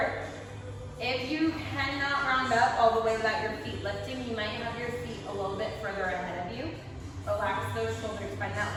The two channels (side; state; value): both; identical; correlation 1.00